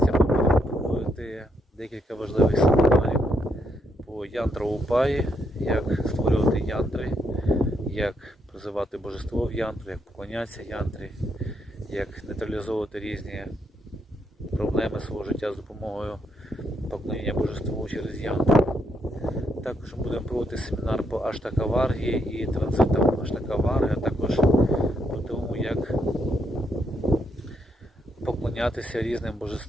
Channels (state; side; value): normal; both; correlation 0.77